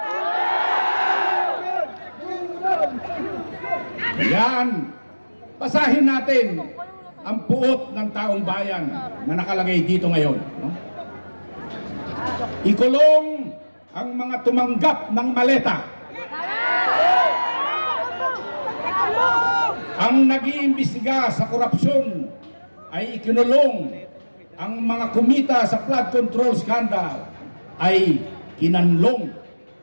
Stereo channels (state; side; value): inverted; both; correlation -1.00